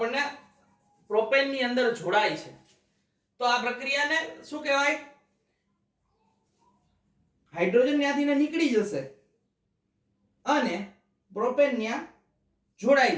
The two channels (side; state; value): both; identical; correlation 1.00